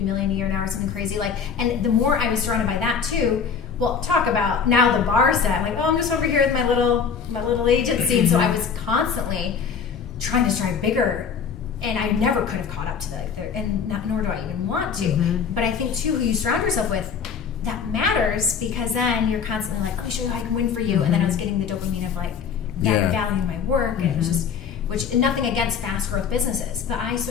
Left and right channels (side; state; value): right; quieter; 6.5 dB